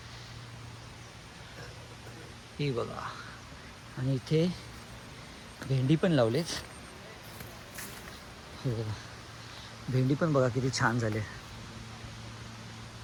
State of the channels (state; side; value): identical; both; correlation 1.00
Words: हे बघा. आणि इथे भेंडी पण लावलेत. हे बघा भेंडी पण बघा किती छान झाले.